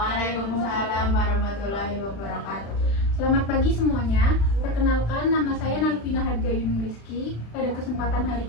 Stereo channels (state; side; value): late; right; 35 ms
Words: warahmatullahi wabarakatuh. Selamat pagi semuanya. Perkenalkan, nama saya Nalvina Harga Yunung Rizky. Pada kesempatan hari